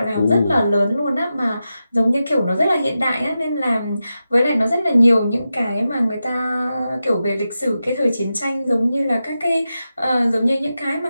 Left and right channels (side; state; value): both; inverted; correlation -0.91